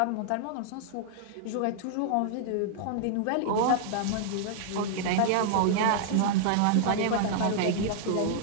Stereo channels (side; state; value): both; different; correlation -0.01